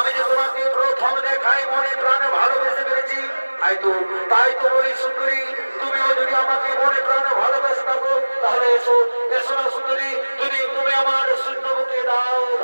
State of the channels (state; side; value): inverted; both; correlation -1.00